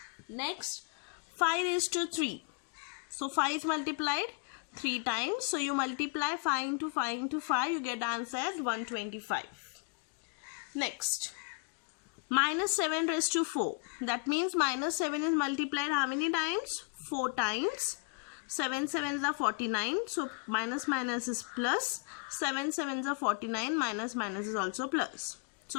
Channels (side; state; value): right; quieter; 35.7 dB